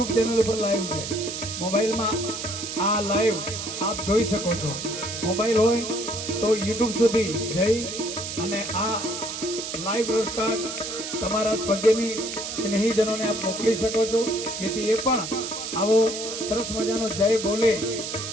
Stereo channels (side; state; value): right; noise; hiss, 6 dB below the sound